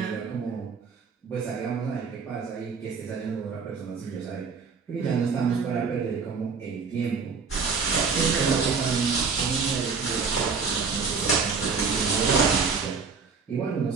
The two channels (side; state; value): left; quieter; 5.3 dB